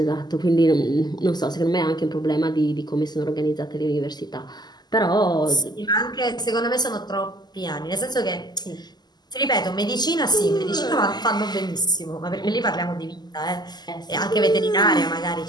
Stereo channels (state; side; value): late; right; 0.20 ms